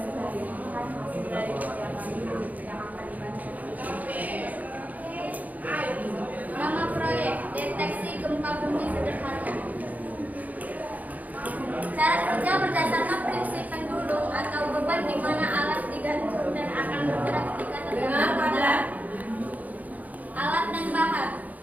Nama proyek deteksi gempa bumi sederhana. Cara kerja berdasarkan prinsip pendulum atau beban di mana alat digantung dan akan bergerak ketika terkena beban. Alat dan bahan:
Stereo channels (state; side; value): late; left; 0.078 ms